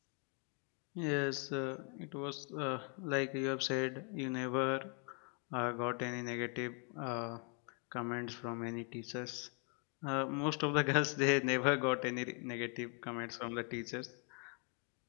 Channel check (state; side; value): quieter; right; 37.6 dB